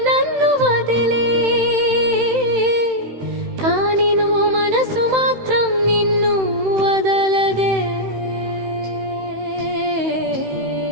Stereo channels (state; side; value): late; left; 16 ms